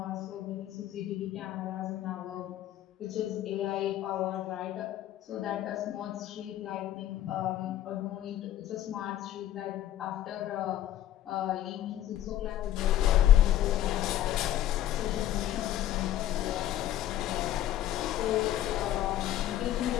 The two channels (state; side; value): quieter; right; 12.4 dB